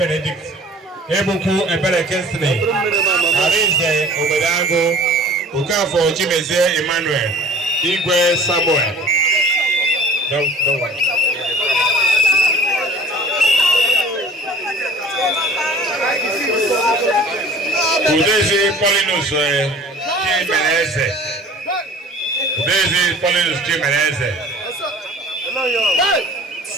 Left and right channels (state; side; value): normal; both; correlation 0.46